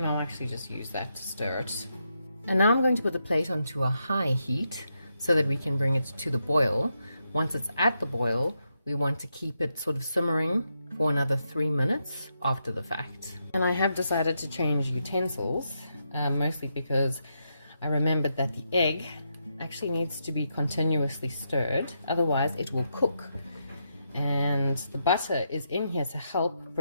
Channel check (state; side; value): inverted; both; correlation -0.82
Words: I'll actually just use that to stir it. And now I'm going to put the plate onto a high heat so that we can bring it to the boil. Once it's at the boil, we want to keep it sort of simmering for another 3 minutes after the fact. And I have decided to change utensils. Mostly because I remembered that the egg actually needs to be continuously stirred, otherwise it will cook. And the butter is in here to help